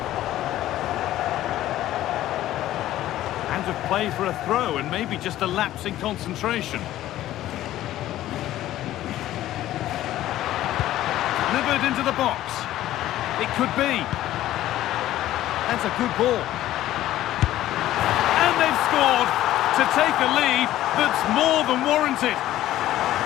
Out of play for a throw and maybe just a lapse in concentration. Delivered into the box. It could be. That's a good ball. And they've scored to take a lead that's more than warranted.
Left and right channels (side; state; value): right; quieter; 14.0 dB